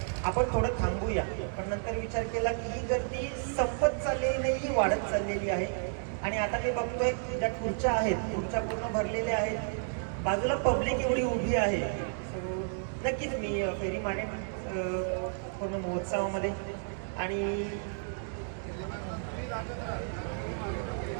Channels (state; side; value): silent; left; digital silence